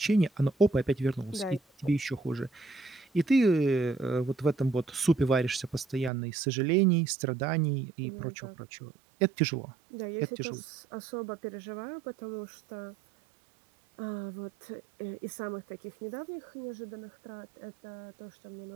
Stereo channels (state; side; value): drops out; left; at 6.1 s